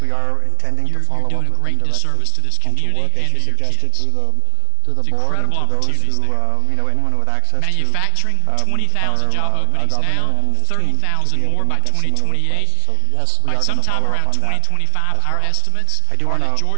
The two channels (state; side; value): different; both; correlation 0.00